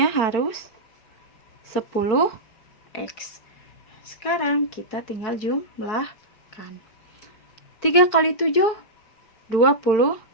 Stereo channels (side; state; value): right; late; 4.5 ms